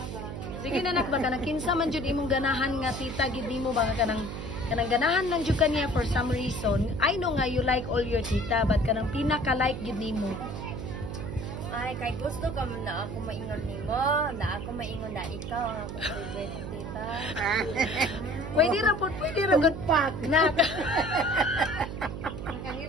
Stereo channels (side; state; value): right; noise; hum, 7 dB below the sound